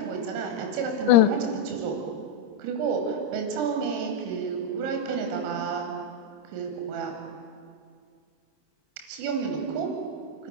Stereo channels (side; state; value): left; late; 27 ms